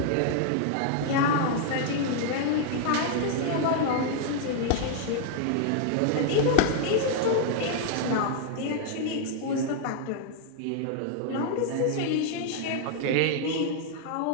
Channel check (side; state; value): both; different; correlation 0.00